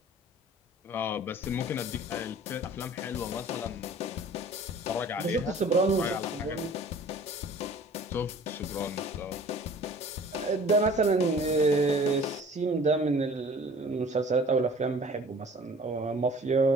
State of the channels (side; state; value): both; normal; correlation 0.48